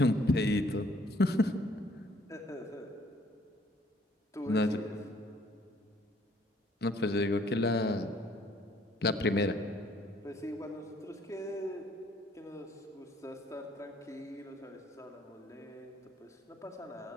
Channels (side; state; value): both; normal; correlation 0.62